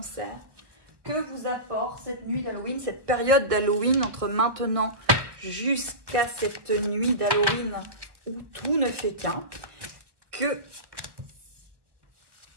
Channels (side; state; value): left; late; 1.3 ms